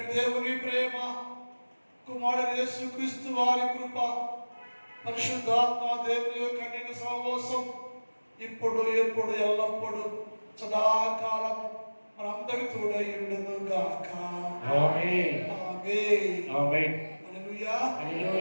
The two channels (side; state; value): both; inverted; correlation -1.00